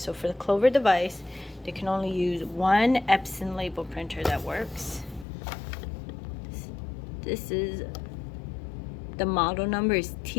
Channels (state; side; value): drops out; right; at 5.2 s